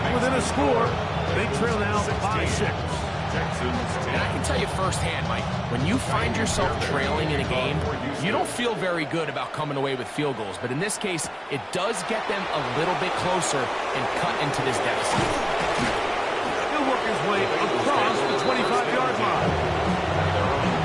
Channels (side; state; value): both; identical; correlation 1.00